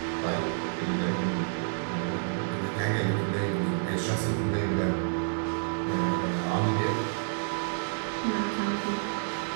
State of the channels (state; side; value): silent; left; 58 dB below the other